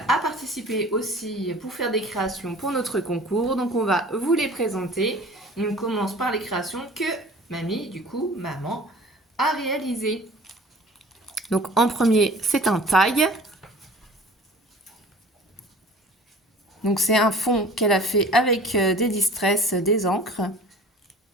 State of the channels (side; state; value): both; normal; correlation 0.45